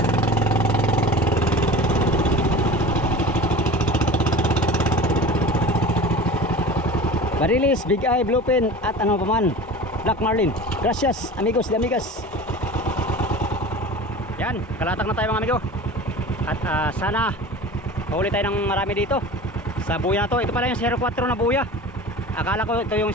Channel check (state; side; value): normal; both; correlation 0.36